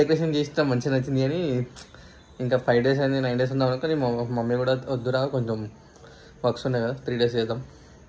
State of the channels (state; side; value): identical; both; correlation 1.00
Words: డెకరేషన్ చేస్తాం, మంచిగా నచ్చింది. కానీ ఇంకా 5 డేస్ అయింది, 9 డేస్ ఉందాం అనుకో. మమ్మీ కూడా వద్దురా కొంచెం వర్క్స్ ఉన్నాయి కదా, 3 డేస్ చేద్దాం